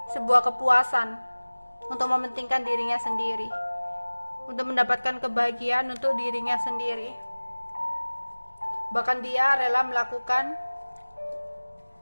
sebuah kepuasan untuk mementingkan dirinya sendiri, untuk mendapatkan kebahagiaan untuk dirinya sendiri. Bahkan dia rela melakukan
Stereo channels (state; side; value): inverted; both; correlation -1.00